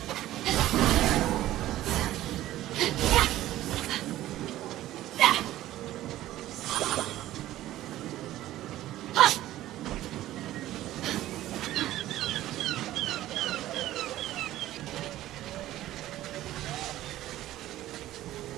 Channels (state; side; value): quieter; left; 14.5 dB